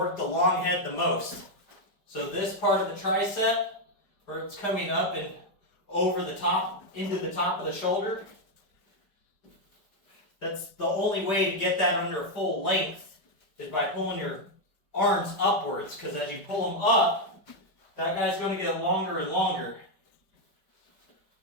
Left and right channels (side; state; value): right; late; 5.0 ms